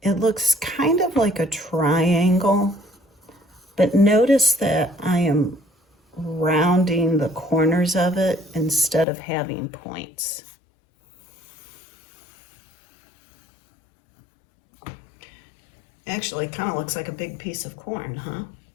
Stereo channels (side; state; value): right; drops out; at 9.1 s